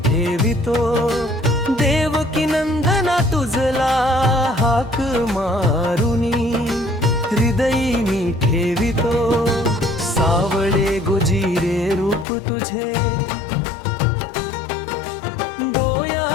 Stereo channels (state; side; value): drops out; right; at 12.2 s